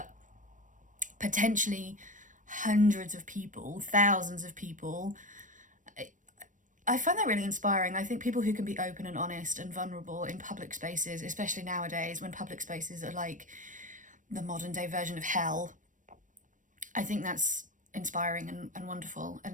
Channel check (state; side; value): late; left; 0.37 ms